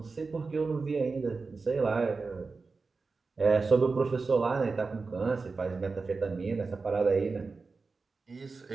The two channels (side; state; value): left; quieter; 4.2 dB